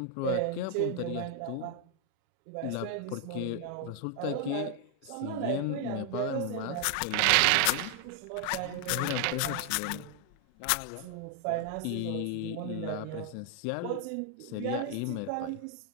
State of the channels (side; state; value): both; different; correlation 0.00